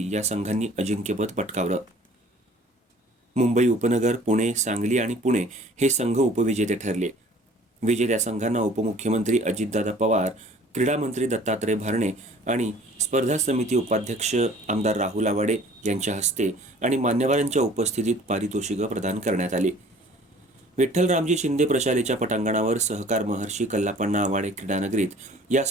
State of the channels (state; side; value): normal; both; correlation 0.51